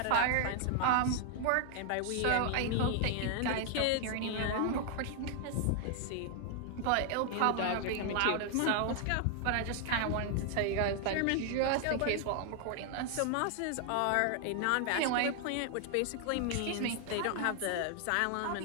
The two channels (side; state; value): both; different; correlation 0.00